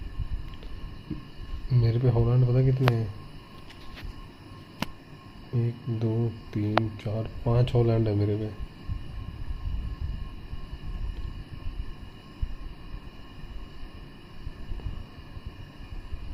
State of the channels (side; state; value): both; identical; correlation 1.00